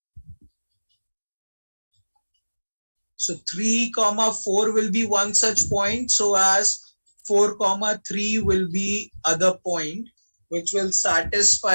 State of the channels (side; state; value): both; inverted; correlation -1.00